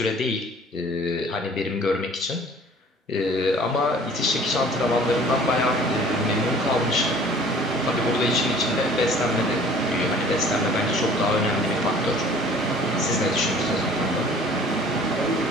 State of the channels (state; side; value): normal; both; correlation 0.50